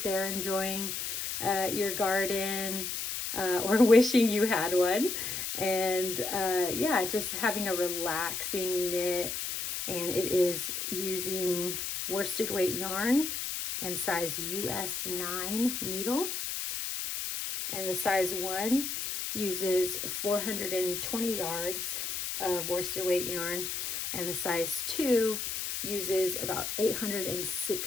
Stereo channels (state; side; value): noise; left; hiss, 3 dB below the sound